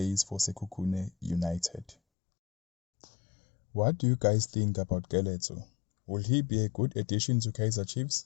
for Sekhukhune United. What do you guys think about Keletso? Will he be a good addition to Kaizer Chiefs,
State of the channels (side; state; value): right; drops out; at 2.0 s